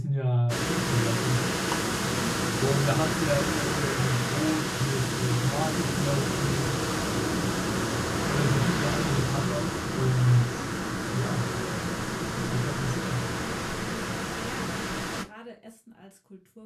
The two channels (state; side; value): identical; both; correlation 1.00